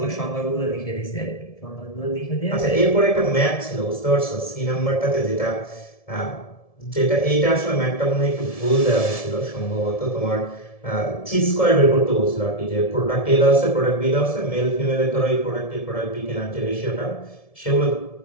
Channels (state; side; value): late; right; 1.7 ms